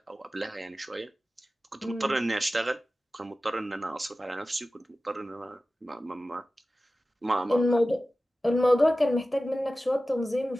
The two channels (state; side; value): normal; both; correlation 0.95